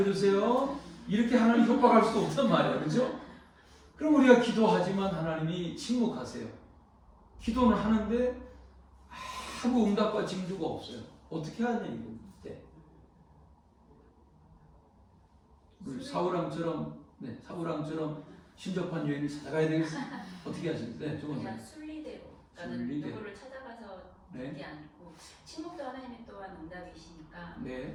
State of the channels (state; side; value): identical; both; correlation 1.00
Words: 이렇게 하나님 협박할 수도 없단 말이에요, 그죠? 그럼 우리가 기도하지만 하나님이 침묵하세요. 기도는 하는데 아무 응답과 징조가 없어요. 어떻게 하냐 이거. 네. 사울왕처럼, 네, 사울왕처럼 신접한 여인을 찾아가야 되겠어요. 어떻게 하시는데? 그냥 순리대로. 나는 순리대로. 누구를 찾아가서 네. 듣지 않고, 침묵도 하나님이 또한 응답이시니까